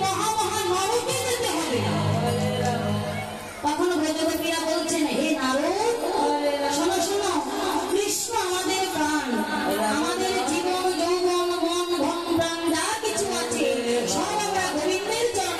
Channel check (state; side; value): identical; both; correlation 1.00